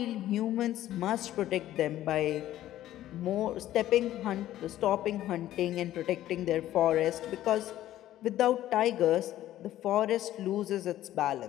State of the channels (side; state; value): right; quieter; 13.5 dB